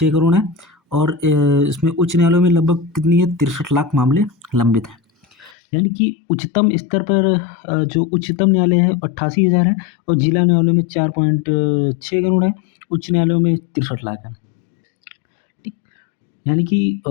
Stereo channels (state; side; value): drops out; right; at 5.6 s